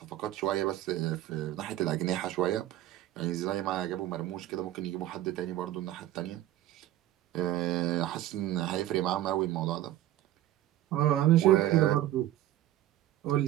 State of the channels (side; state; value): left; quieter; 13.8 dB